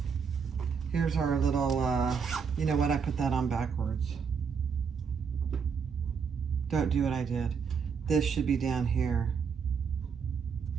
Here's our little, you know what? I put that on backwards. Don't do what I did. This should be down here.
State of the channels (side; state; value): left; quieter; 6.2 dB